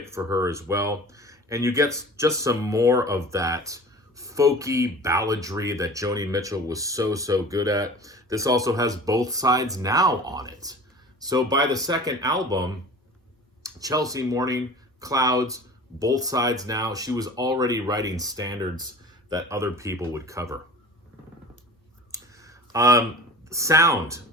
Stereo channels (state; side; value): normal; both; correlation 0.40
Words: for her as well. And you get just some more of that folky balladry that Joni Mitchell was so good at. This also has Both Sides Now on it. So by the second album, Chelsea Morning, Clouds, Both Sides Now, she was already writing standards that other people would cover. Sound